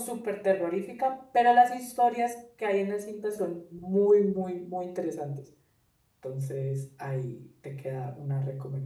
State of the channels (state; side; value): identical; both; correlation 1.00